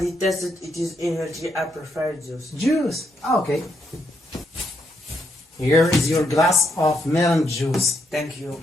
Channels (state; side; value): normal; both; correlation 0.77